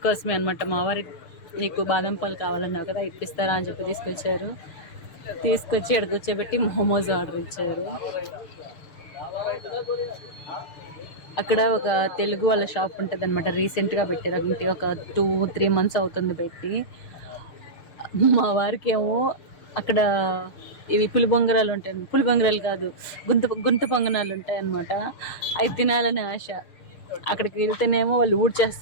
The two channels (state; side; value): late; right; 6.5 ms